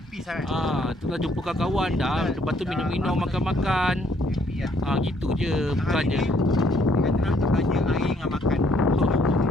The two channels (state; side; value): normal; both; correlation 0.66